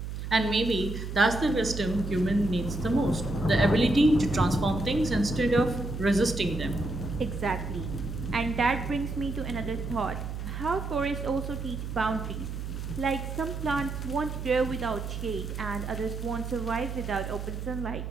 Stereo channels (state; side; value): noise; right; hum, 6 dB below the sound